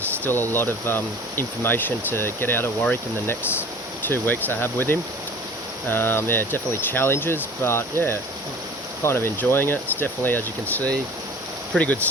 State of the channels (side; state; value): both; normal; correlation 0.43